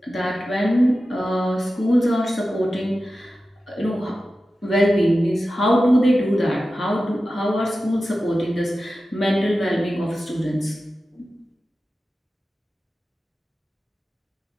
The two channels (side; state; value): both; normal; correlation 0.93